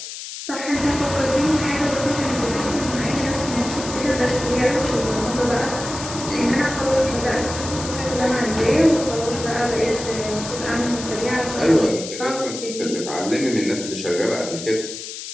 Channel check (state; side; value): noise; left; hiss, 9 dB below the sound